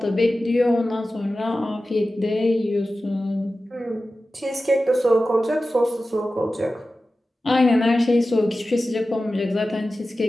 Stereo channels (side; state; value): both; normal; correlation 0.94